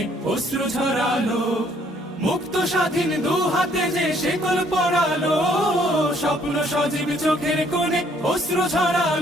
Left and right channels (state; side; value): normal; both; correlation 0.64